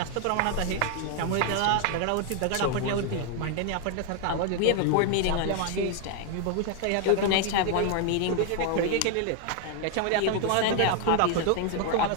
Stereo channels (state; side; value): different; both; correlation 0.00